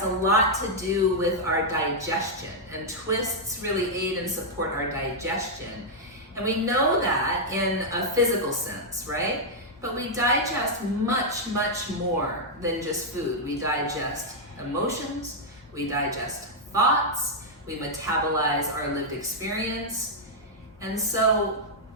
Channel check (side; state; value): both; normal; correlation -0.04